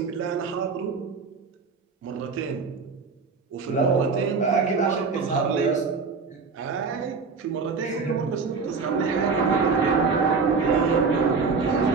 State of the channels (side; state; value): left; quieter; 4.9 dB